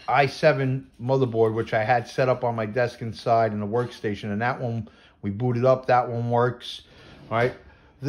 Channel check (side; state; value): both; identical; correlation 1.00